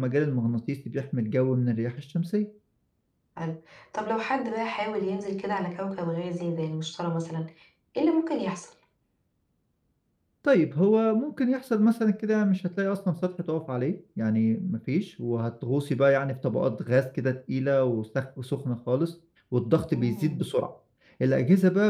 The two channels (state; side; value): identical; both; correlation 1.00